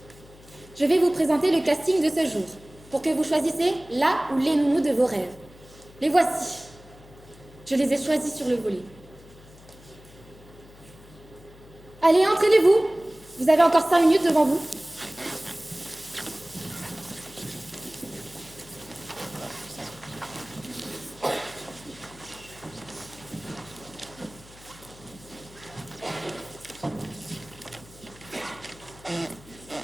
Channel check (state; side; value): noise; left; hum, 22 dB below the sound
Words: Je vais vous présenter le casting de ce jour, pour que vous choisissiez la ou les nounous de vos rêves. Les voici. Je les ai choisis sur le volet. Allez, entraînez-vous. Vous avez encore 5 minutes devant vous.